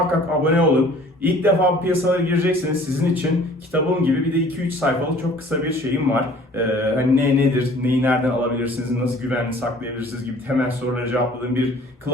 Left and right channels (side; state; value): both; normal; correlation 0.51